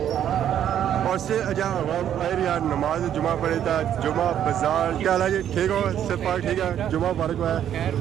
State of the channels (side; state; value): left; quieter; 10.1 dB